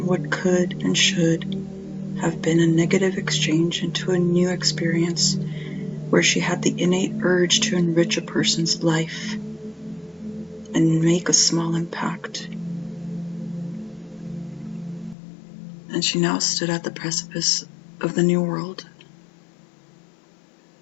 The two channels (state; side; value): drops out; right; at 15.2 s